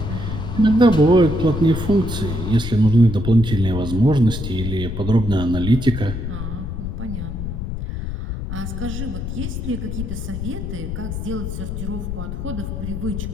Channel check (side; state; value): left; noise; rumble, 5 dB below the sound